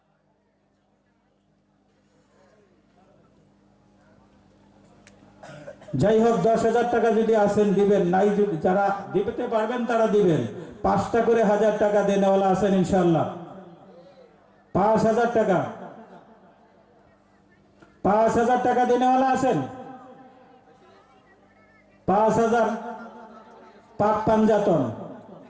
যাই হোক, 10,000 টাকা যদি আসেন দিবেন, নাই যদি যারা দিতে পারবেন তারা দিবেন। 5টা করে 1000 টাকা দেনেওয়ালা আছেন ইনশাআল্লাহ। 5,000 টাকা, 5,000 টাকা দেনেওয়ালা আছেন। 5,000 পাক পাঞ্জাতন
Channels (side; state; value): both; identical; correlation 1.00